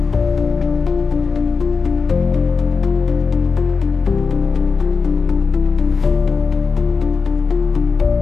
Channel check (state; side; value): quieter; right; 5.0 dB